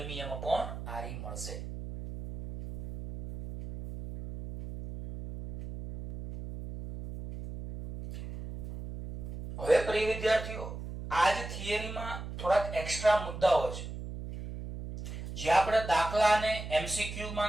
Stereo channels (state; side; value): noise; right; hum, 7 dB below the sound